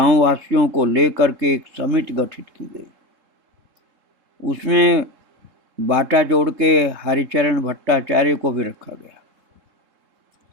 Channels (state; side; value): late; left; 3.7 ms